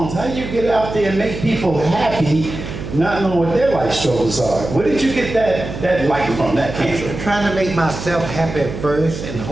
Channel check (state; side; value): noise; right; hum, 8 dB below the sound